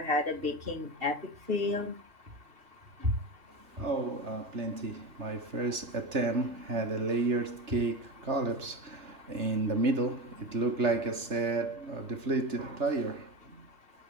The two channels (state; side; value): late; left; 3.4 ms